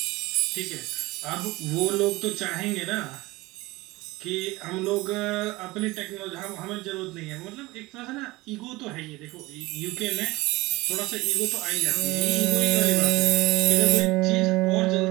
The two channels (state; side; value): quieter; left; 20.9 dB